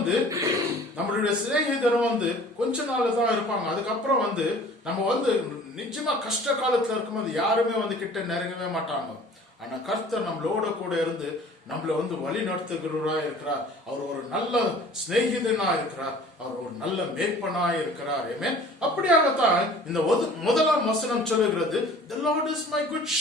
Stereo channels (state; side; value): normal; both; correlation 0.48